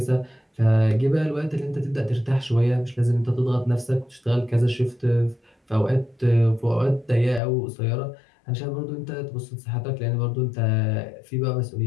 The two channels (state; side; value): drops out; right; at 7.4 s